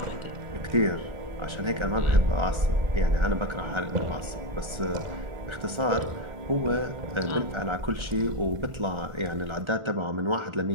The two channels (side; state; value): left; late; 1.3 ms